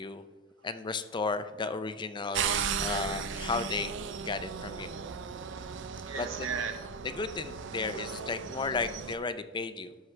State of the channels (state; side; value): normal; both; correlation 0.09